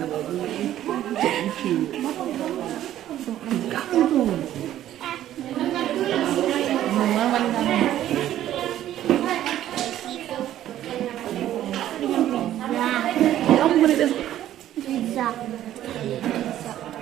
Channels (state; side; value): quieter; left; 12.4 dB